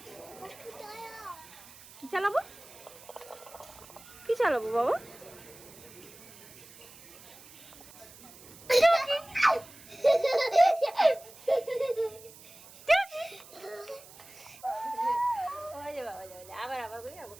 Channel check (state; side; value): noise; right; hiss, 20 dB below the sound